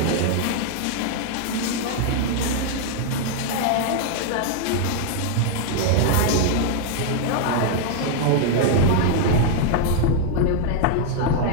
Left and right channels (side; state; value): both; different; correlation 0.00